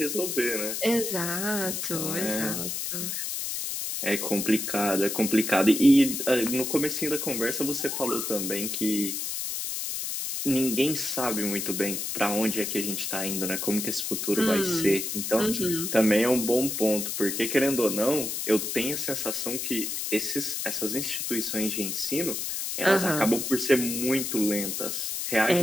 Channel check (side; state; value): left; noise; hiss, 3 dB below the sound